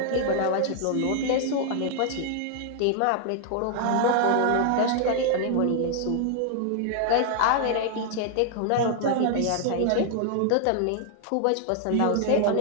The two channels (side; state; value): both; different; correlation 0.00